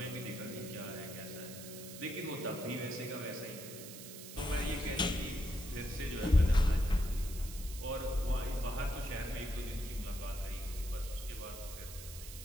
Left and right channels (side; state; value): right; noise; hiss, 12 dB below the sound